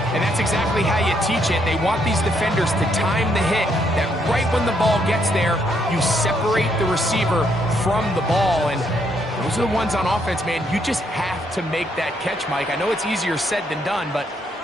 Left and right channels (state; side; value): normal; both; correlation 0.73